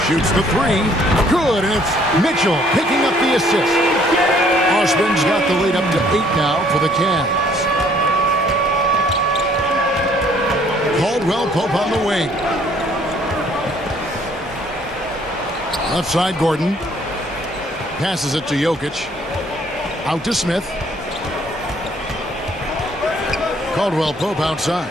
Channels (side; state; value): both; normal; correlation 0.62